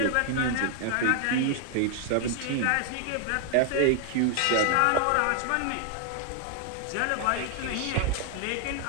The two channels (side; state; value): both; different; correlation 0.00